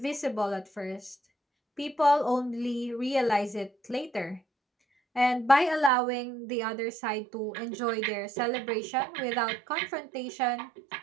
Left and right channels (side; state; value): left; drops out; at 5.9 s